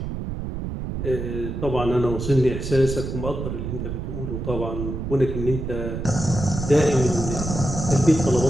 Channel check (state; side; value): noise; right; rumble, 5 dB below the sound